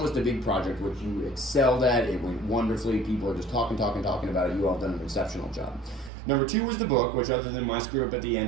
was the big project, which you excelled at. It went wonderfully. People are just talking about it. You all done an exceptional job. Number 2 was the book, which other than my screw up at the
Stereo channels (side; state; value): left; drops out; at 6.1 s